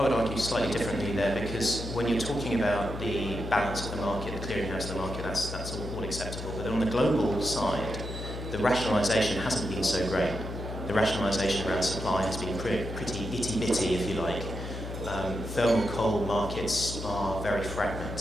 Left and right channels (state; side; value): noise; left; hum, 7 dB below the sound